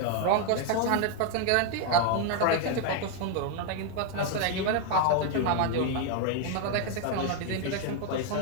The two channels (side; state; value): both; different; correlation 0.00